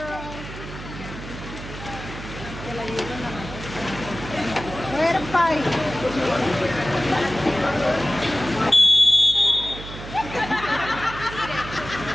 Way to fight.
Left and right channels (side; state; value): right; noise; hum, 11 dB below the sound